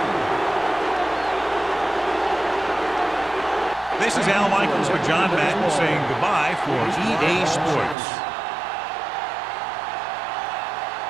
This is Al Michaels for John Madden saying goodbye for EA Sports.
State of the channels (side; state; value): left; drops out; at 8.0 s